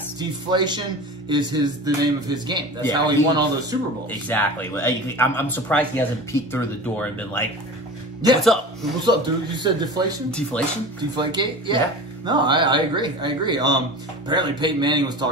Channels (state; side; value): normal; both; correlation 0.34